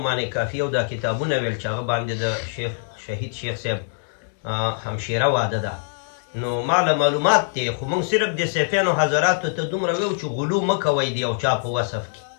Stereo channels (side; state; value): right; silent; digital silence